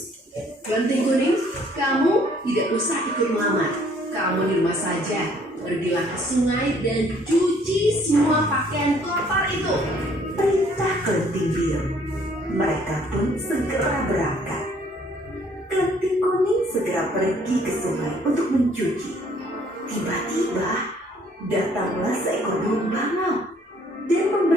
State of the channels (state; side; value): normal; both; correlation 0.61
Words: Klenting Kuning, kamu tidak usah ikut melamar. Kamu di rumah saja. Pergilah ke sungai dan cuci semua pakaian kotor itu. Perintah Klenting Biru. Mereka pun segera berangkat. Klenting Kuning segera pergi ke sungai untuk mencuci. Tiba-tiba datanglah seekor burung bangau dan